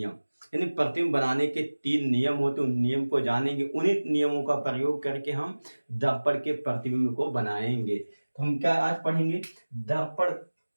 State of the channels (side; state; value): both; inverted; correlation -1.00